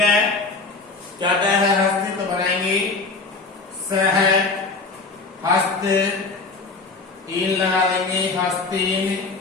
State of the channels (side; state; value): right; quieter; 3.9 dB